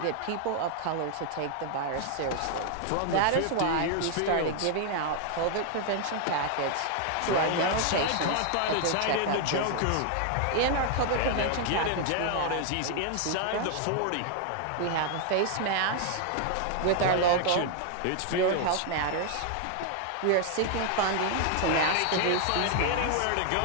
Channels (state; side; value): different; both; correlation 0.00